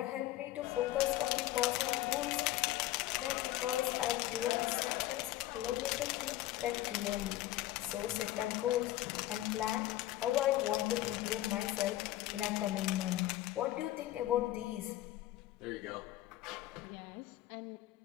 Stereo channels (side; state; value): right; quieter; 15.0 dB